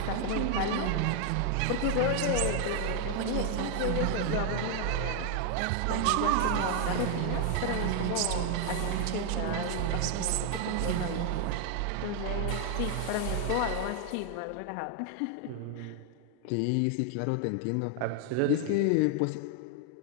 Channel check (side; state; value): both; different; correlation 0.00